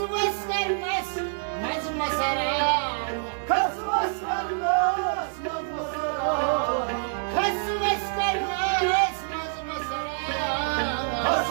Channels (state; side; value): silent; left; digital silence